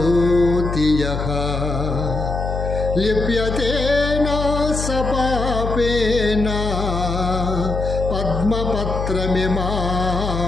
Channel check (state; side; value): noise; left; hum, 3 dB below the sound